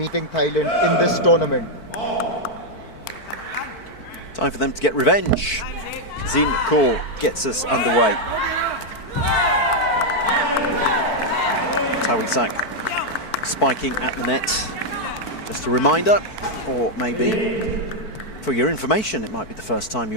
Thailand in this tournament. Time for them to get revenge. Zin Kaur gets us underway. Tawisak spiking at the net. Just a reminder, or maybe for your information, it might be the first time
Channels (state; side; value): late; right; 4.5 ms